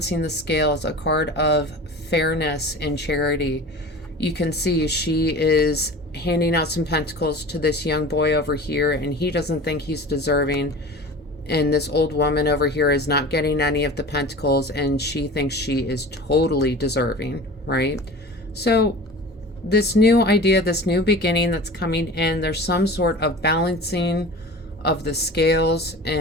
the scales, a card of fairness and charity. You can see she is handing out some pentacles to this young boy over here, and he doesn't think he's deserving. And this old woman over here is not getting any of the pentacles, and she thinks she is totally deserving, right? So this new idea, this new beginning that's coming in, there's some sort of balancing of the scales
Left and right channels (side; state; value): both; normal; correlation 0.37